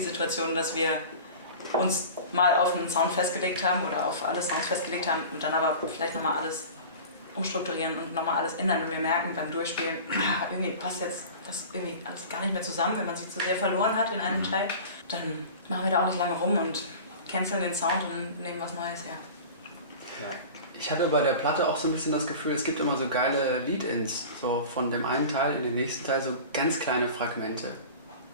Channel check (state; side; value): inverted; both; correlation -0.37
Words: dass wir uns mal auf einen Sound festgelegt haben oder auf alle Sounds festgelegt haben und dann aber vielleicht nochmal alles umstrukturieren und nochmal alles ändern. Wenn wir merken beim Durchspielen, irgendwie passt jetzt das irgendwie alles gar nicht mehr zusammen, wenn man sich zu sehr verloren hat in einem Teil, dann machen wir da auch nicht lange rum und canceln den Sound und nehmen was Neues her. Ja. Ich hatte bei der Platte auch so ein bisschen das Gefühl, es gibt immer so geile Lead-Ins, so von dem einen Teil in den nächsten Teil, so ganz kleine Fragmente.